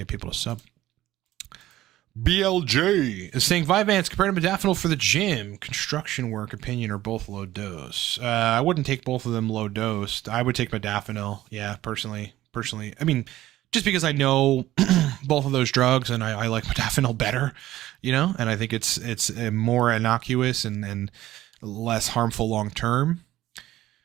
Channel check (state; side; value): quieter; left; 14.9 dB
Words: people to sub. BLJ is saying Vyvanse compared to modafinil for the gym, construction work, opinion, or both low dose. I wouldn't take both of them low dose. I would take modafinil. Yeah, personally. I mean, just because I know both of those drugs and I like modafinil better, and I think it's more innocuous and less harmful long term,